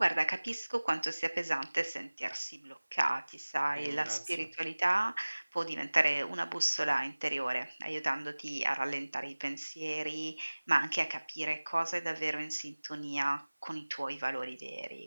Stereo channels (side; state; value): both; inverted; correlation -1.00